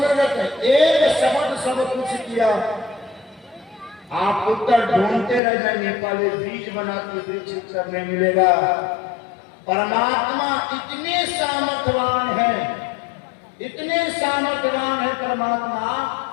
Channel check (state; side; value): drops out; right; at 5.4 s